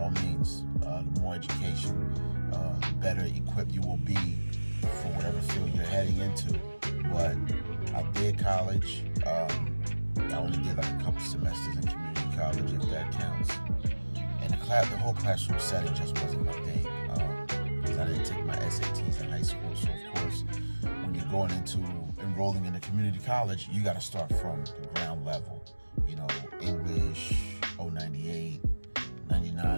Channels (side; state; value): both; inverted; correlation -1.00